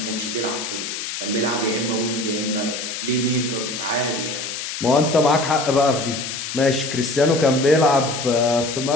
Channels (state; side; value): noise; left; hiss, 6 dB below the sound